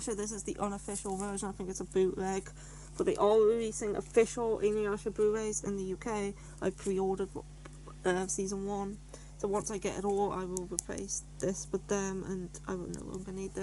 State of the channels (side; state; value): both; identical; correlation 1.00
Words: this is the unofficial version. I think it's a bootleg. But they are releasing official Inuyasha Blu-rays in the UK. I pre-ordered season 1. So once I get it all, I will replace this with them, and I will no longer need